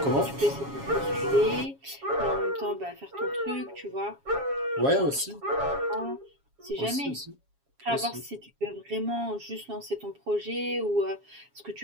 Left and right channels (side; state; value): left; late; 7.3 ms